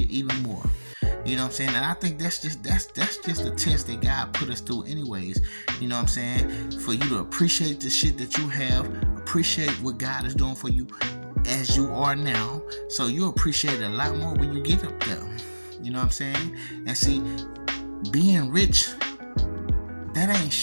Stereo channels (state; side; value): inverted; both; correlation -1.00